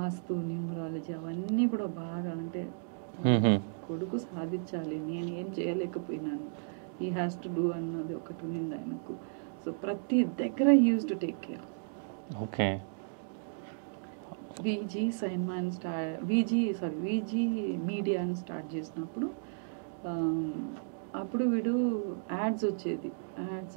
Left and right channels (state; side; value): silent; left; digital silence